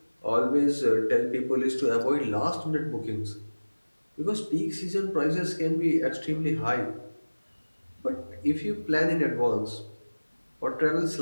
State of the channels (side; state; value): both; inverted; correlation -1.00